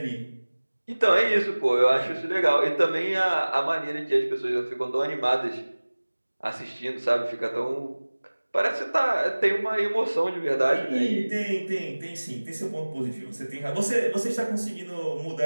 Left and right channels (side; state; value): both; inverted; correlation -1.00